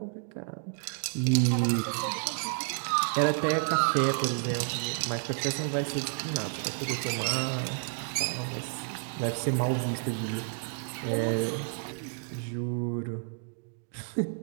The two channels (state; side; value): silent; left; 58 dB below the other